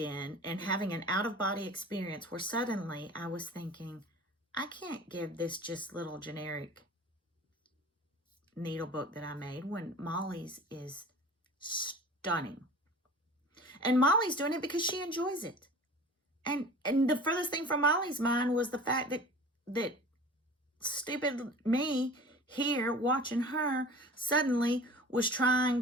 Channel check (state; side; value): normal; both; correlation 0.41